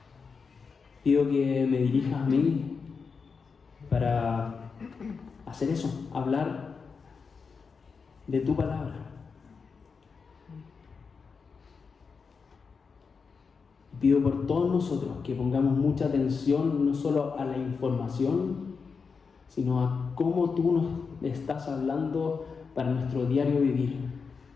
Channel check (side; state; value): right; quieter; 5.3 dB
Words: Pido que me dirijas a mí para hacer eso, hablar de tu palabra. Pido por todos nosotros que pongamos mucha atención no solo a la información, sino a cómo tú nos estás hablando para nuestro diario vivir,